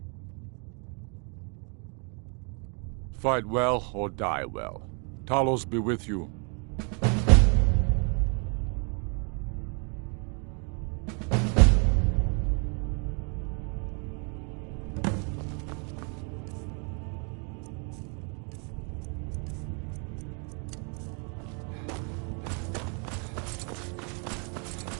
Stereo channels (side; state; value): left; quieter; 37.5 dB